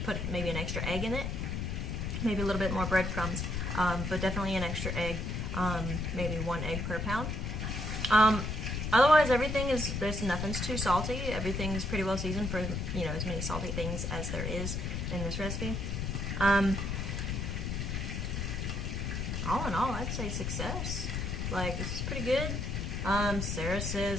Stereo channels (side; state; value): left; noise; rumble, 2 dB below the sound